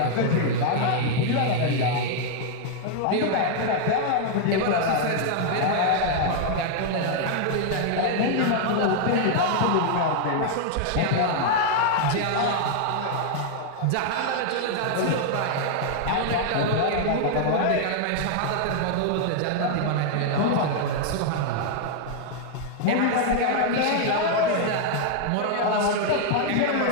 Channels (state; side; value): different; both; correlation 0.00